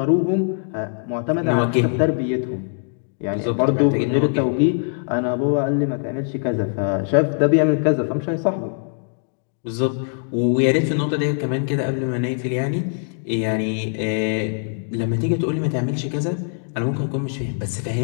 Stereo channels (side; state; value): right; silent; digital silence